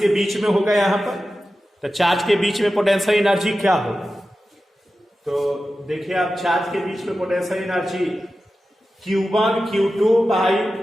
के बीच में होगा यहां पर। तो चार्ज के बीच में पोटेंशियल एनर्जी क्या होगा, तो देखिए आप चार्ज के बीच में potential energy Q1 Q2 by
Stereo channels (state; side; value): normal; both; correlation 0.93